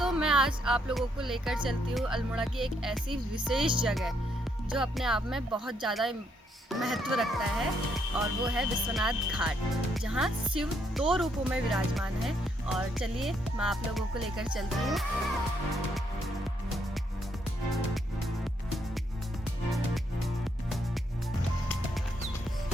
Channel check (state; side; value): normal; both; correlation 0.74